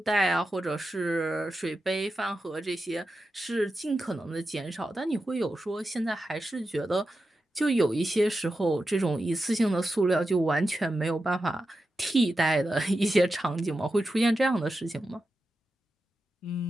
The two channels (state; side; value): normal; both; correlation 0.90